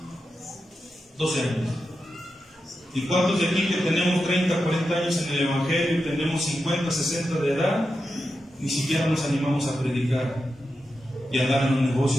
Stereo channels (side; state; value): both; normal; correlation 0.89